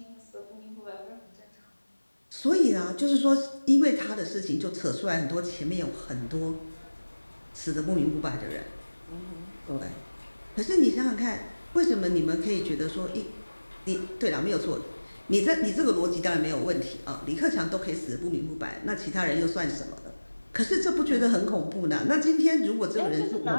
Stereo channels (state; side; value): inverted; both; correlation -1.00